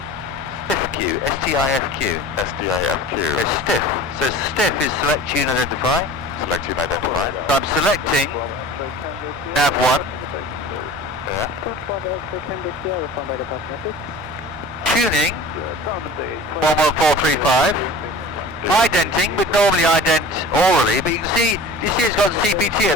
STIFQ. STIFQ. STIFQ. It's stiff. So stiff is select, tune, identify. Select tune, identify. So I'm selecting nav 1. Yeah. Tuning 11435. Identing, we'd normally ident orally, but you see it's got CPT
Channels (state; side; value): normal; both; correlation 0.40